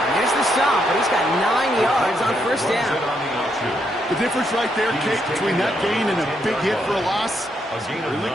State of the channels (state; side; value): normal; both; correlation 0.77